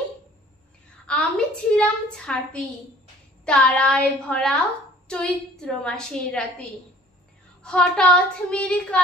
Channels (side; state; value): both; normal; correlation 0.52